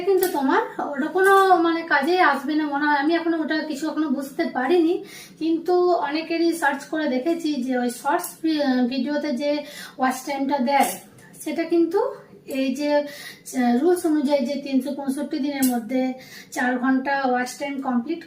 কিন্তু তোমার ওটা কোনো মানে কাজে আসবে না মনে হয়। আমি এখনো ওটা কিছু এখনো বুঝতে পারিনি, কিন্তু অনেকেরই সার্চ করে দেখেছি যে ওই শর্টস ভিডিওতে যে ওয়াচ টাইমটা দেয়, সেটা কিন্তু এই যে রুলস অনুযায়ী যে 365 দিনের মধ্যে 4 ঘন্টা ওয়াচ টাইম কমপ্লিট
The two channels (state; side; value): identical; both; correlation 1.00